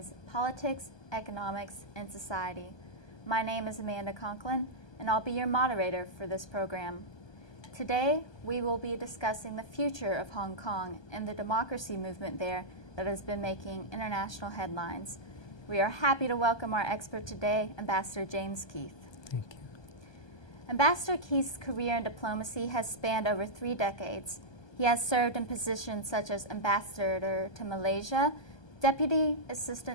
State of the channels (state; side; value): late; right; 1.2 ms